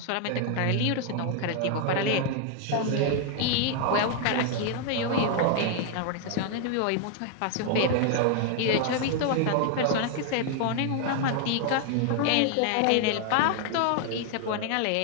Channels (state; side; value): different; both; correlation 0.00